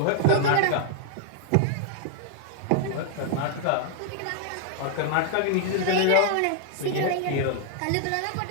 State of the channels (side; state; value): both; different; correlation 0.00